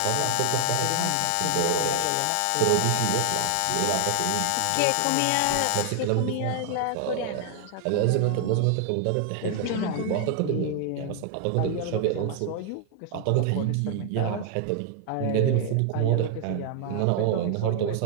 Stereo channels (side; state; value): both; different; correlation 0.00